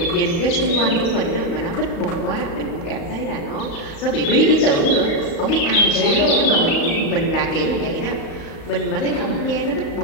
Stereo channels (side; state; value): right; late; 35 ms